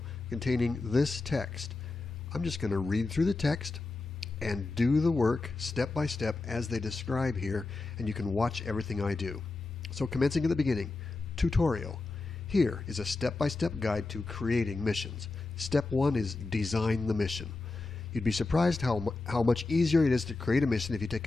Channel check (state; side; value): quieter; right; 3.5 dB